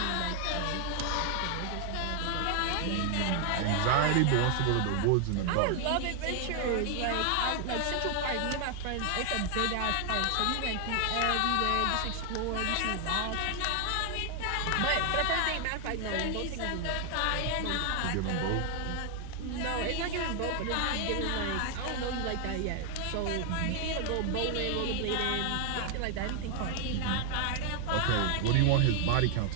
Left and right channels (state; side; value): different; both; correlation 0.00